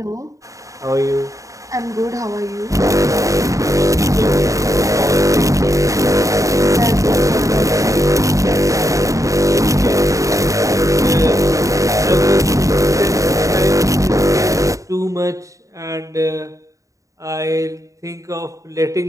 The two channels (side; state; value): left; late; 0.16 ms